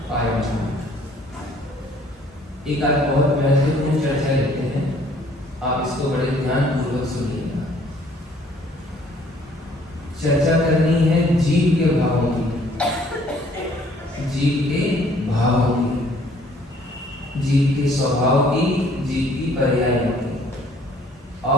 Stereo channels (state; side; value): normal; both; correlation 0.59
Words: पारमार्थिक। एक आज बहुत महत्वपूर्ण चर्चा लेते हैं, आप इसको बड़े ध्यानपूर्वक सुनिएगा। चर्चा करनी है जीव के भावों की, जीव के भावों की, जीव के स्वभाव की, जीव की पर्यायों की,